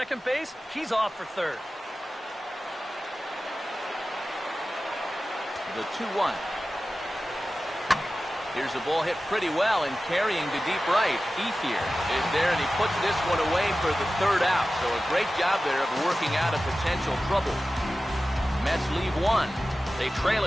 base, he's off for third. The 2-1. Here's a ball hit pretty well and carrying to deep right. Ethier is there, and he puts this one away for the third out. So a great job there of working out of potential trouble. Mets leave one. They trail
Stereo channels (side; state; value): both; normal; correlation 0.95